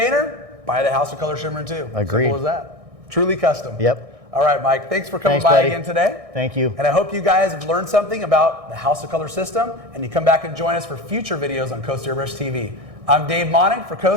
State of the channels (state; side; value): late; left; 1.6 ms